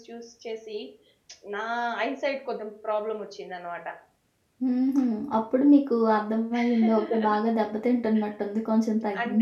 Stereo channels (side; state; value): both; identical; correlation 1.00